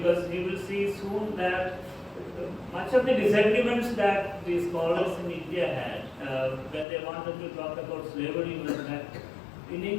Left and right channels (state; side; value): drops out; right; at 6.9 s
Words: we will see soon that much of the disagreements that the scholars in India had when they wanted to talk about slavery was that in